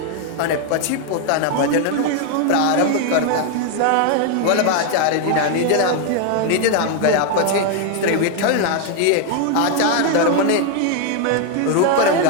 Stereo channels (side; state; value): both; different; correlation 0.00